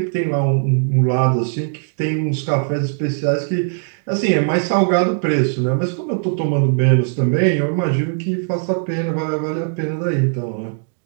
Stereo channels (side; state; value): left; silent; 62 dB below the other